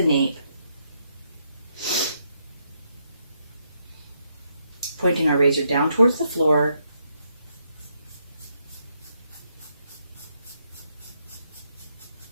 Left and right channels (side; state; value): both; inverted; correlation -0.77